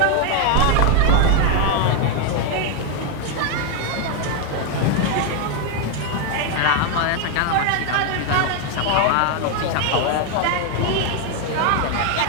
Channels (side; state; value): both; different; correlation 0.01